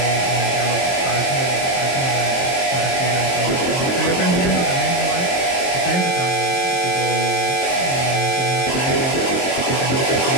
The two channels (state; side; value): late; right; 23 ms